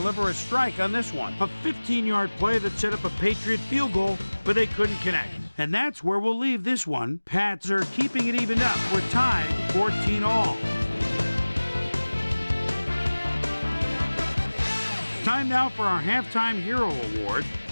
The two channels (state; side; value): inverted; both; correlation -1.00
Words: a strike on this one. A 15-yard play that set up a Patriot field goal, but they couldn't connect. And that's where we'll leave this one. Pats are keeping it evened up. We're tied 14-all. Time now for our Halftime Hero Award,